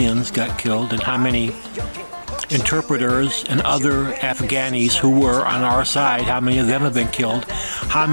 got killed and how many interpreters and other Afghanis who were on our side, how many of them have been killed, how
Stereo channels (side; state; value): both; inverted; correlation -1.00